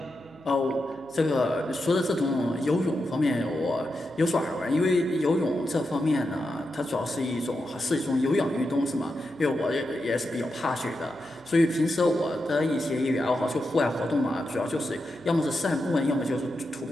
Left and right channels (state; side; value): noise; right; hum, 26 dB below the sound